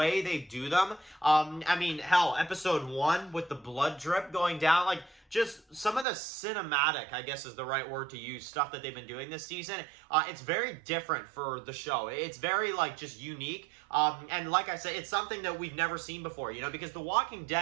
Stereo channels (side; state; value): left; drops out; at 6.1 s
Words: they do them. I mean, hell, episode 1 with the blood drip going down, like, just some of the cinematic, I guess is the right word to use, stuff that they've been doing this season. It's very different for the show. It's very, like, just unique. And like I said, it's something that we've never seen before, because The Walking